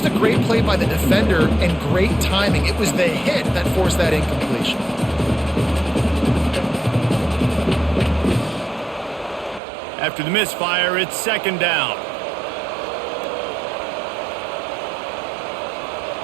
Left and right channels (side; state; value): left; drops out; at 9.6 s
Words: a great play by the defender and great timing. It was the hit that forced that incompletion. After the misfire, it's second down.